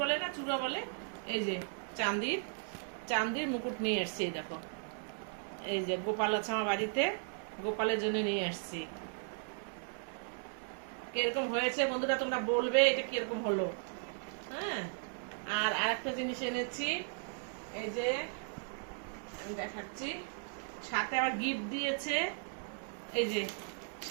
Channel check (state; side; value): silent; left; 53 dB below the other